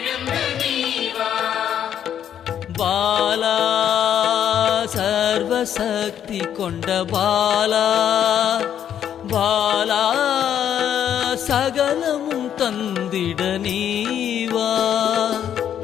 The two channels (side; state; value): right; quieter; 9.6 dB